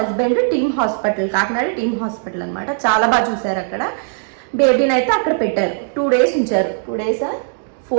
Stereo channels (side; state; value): left; silent; digital silence